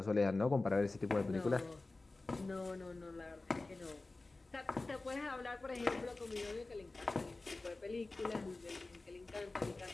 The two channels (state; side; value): quieter; right; 3.2 dB